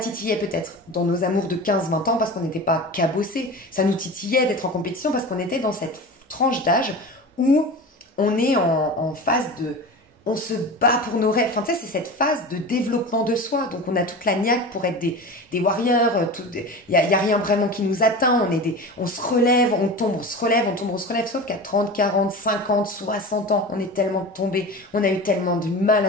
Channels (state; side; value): normal; both; correlation 0.31